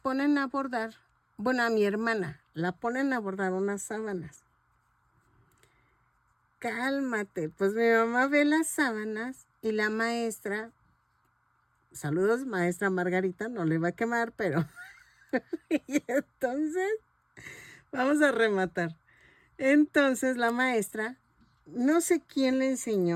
a bordar, bueno, a mi hermana, la ponen a bordar unas sábanas. Cálmate, pues mi mamá ve las sábanas y la maestra, saludos maestra Margarita, no le va a quemar, pero... y entonces, vamos a rematar. Entonces la maestra, no sé quién le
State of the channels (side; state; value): both; identical; correlation 1.00